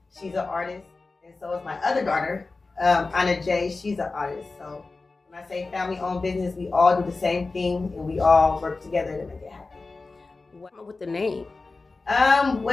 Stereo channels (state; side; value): quieter; right; 3.7 dB